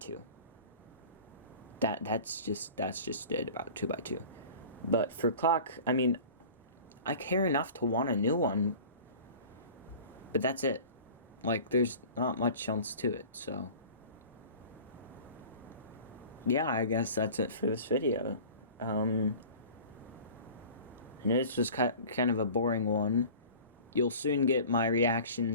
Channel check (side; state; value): both; inverted; correlation -0.42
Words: That's just it about 2x2. But for clock, I mean, I care enough to want a new one, but that's it. There's not much else to it, so yeah, I guess that's it for this video. I know this was kind of a boring one. You'll soon get my